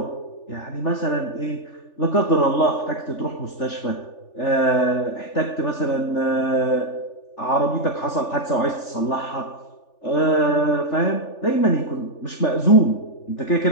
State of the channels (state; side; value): late; right; 3.4 ms